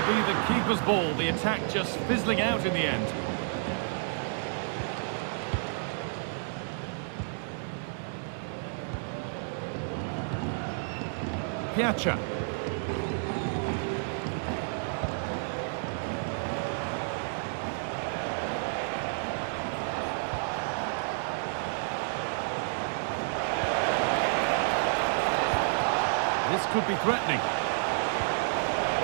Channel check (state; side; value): silent; left; 58 dB below the other